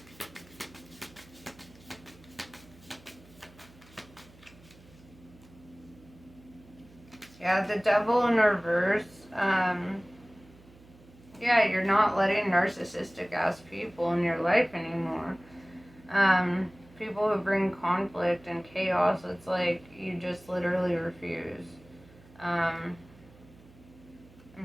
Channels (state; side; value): noise; right; hum, 24 dB below the sound